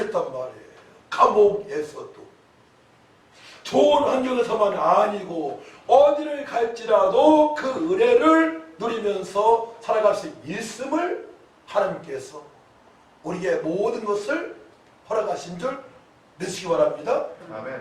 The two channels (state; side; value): identical; both; correlation 1.00